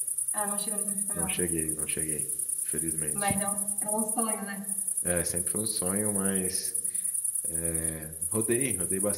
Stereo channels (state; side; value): identical; both; correlation 1.00